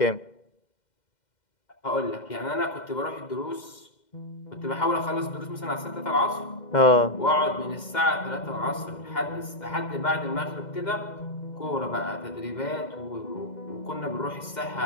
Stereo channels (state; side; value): late; right; 2.1 ms